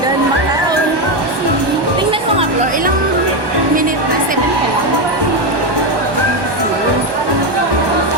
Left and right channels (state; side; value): late; left; 1.2 ms